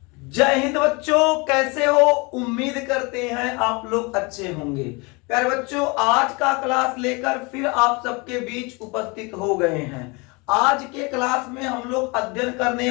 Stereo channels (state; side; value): quieter; right; 28.2 dB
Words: जय हिंद बच्चों, कैसे हो? उम्मीद करते हैं आप लोग अच्छे होंगे। प्यारे बच्चों, आज का क्लास लेकर फिर आप सबके बीच उपस्थित हो गए हैं। आज के क्लास में हम लोग अध्ययन करने